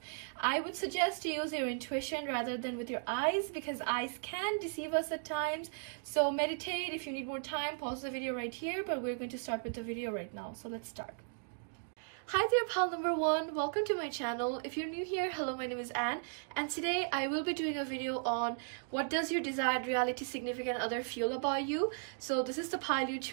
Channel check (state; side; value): silent; left; digital silence